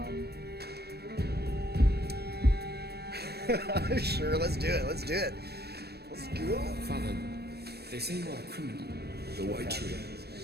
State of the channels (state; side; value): late; left; 0.47 ms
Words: Sure, let's do it. Let's do it. Let's go. Father, they say you are a criminal. The white tree,